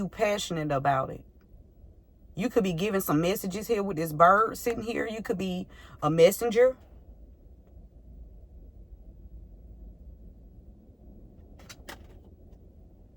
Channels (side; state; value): both; identical; correlation 1.00